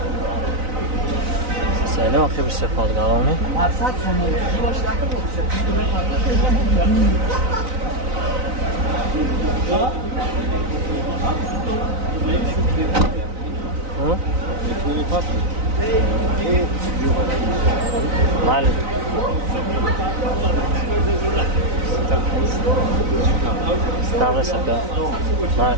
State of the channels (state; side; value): late; left; 3.9 ms